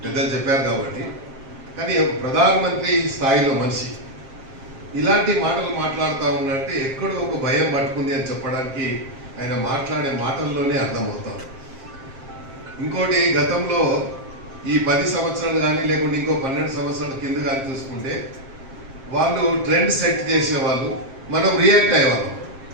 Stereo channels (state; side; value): late; left; 7.5 ms